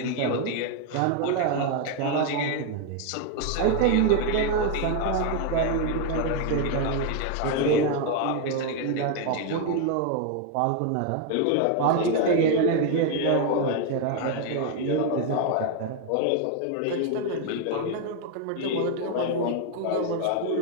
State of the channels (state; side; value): different; both; correlation 0.01